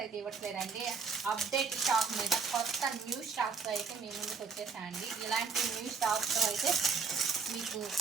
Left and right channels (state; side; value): quieter; left; 5.3 dB